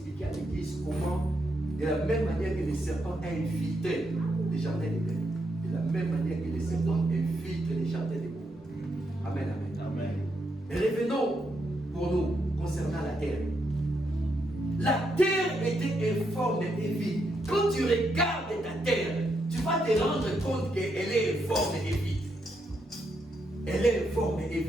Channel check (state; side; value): normal; both; correlation 0.80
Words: à l'église comment, de la même manière que les serpents infiltraient les jardins d'Éden, de la même manière que les serpents infiltrent les jardins des pauvres. Amen, amen. Amen. Mais revenons pour nous concernant la terre. La terre était informe et vide. Quand tu regardes ta terre, tu vas te rendre compte qu'elle est informe et vide. Elle est informe et